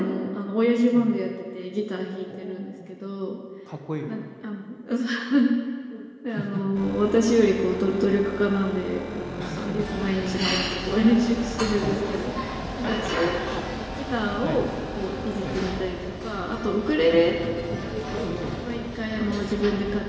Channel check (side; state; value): both; identical; correlation 1.00